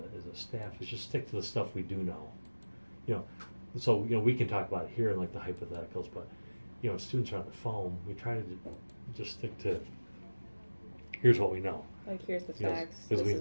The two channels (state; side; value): inverted; both; correlation -1.00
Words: staff is just stick to the stuff we do know. So we can talk about it here in like the hypotheticals, but students are on the phone. We try to just stick to here's what we know. like here's the facts. As This is